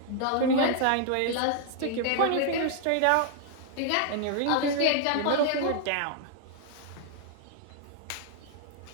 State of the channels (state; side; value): different; both; correlation 0.00